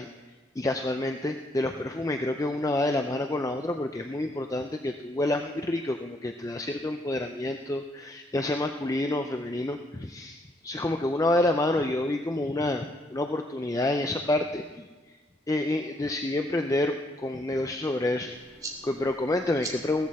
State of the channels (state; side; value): normal; both; correlation 0.71